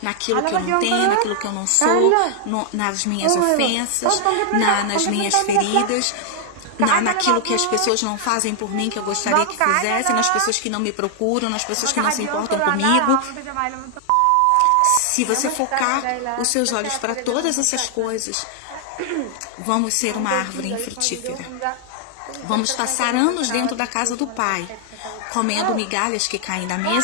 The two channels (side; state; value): both; different; correlation 0.00